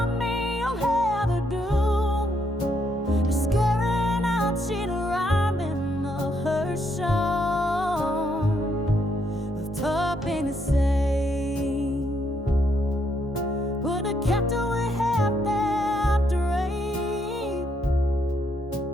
me, you'll have a doom. Scaring out, she'd rhyme in of her song. Of topping the same. Would have kept away half that dream.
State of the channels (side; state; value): both; normal; correlation 0.75